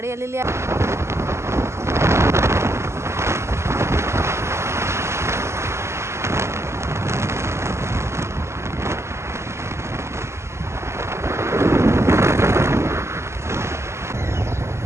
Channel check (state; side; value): late; left; 0.13 ms